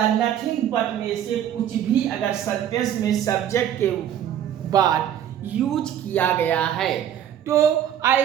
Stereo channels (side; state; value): left; quieter; 10.3 dB